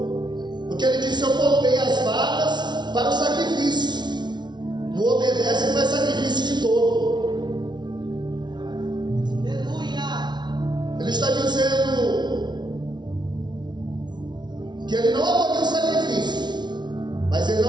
Porque ele disse: eu poupei as vacas para o sacrifício. Não obedece e faz sacrifício de todo. Aleluia. Ele está dizendo que ele não aboliu o sacrifício, mas ele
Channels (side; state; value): left; late; 0.21 ms